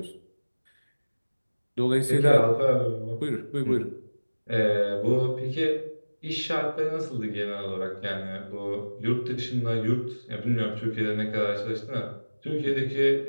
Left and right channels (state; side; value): inverted; both; correlation -1.00